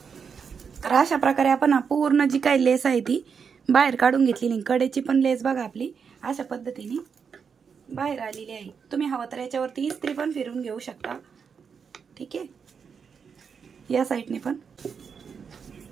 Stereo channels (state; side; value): quieter; left; 6.3 dB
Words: तर अशा प्रकारे आपण पूर्ण जी काही लेस आहे ती बाहेर काढून घेतलेली। कडेची पण लेस बघा आपली अशा पद्धतीने बाहेर आलेली आहे। तुम्ही हवं तर याच्यावरती इस्त्री पण फिरून घेऊ शकता। ठीक आहे, या साईडने पण।